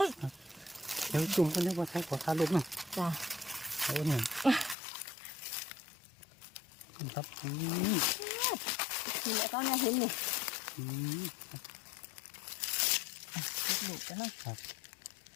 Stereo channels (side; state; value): right; drops out; at 4.8 s